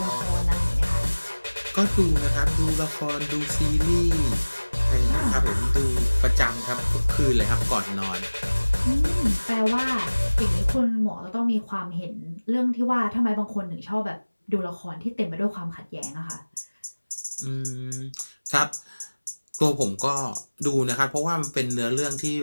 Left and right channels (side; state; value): both; inverted; correlation -1.00